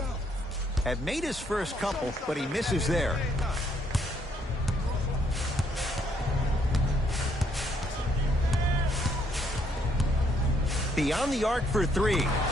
Had made his first couple, but he misses there. Beyond the arc for three.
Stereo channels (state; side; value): normal; both; correlation 0.70